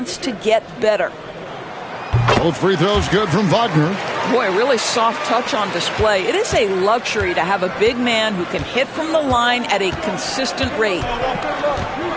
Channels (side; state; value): both; identical; correlation 1.00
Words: to get better. Both free throws good from Wagner. Boy, really soft touch on display. It is a luxury to have a big man who can hit from the line at a consistent rate.